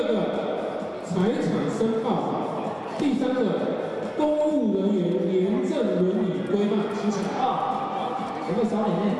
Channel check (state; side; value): identical; both; correlation 1.00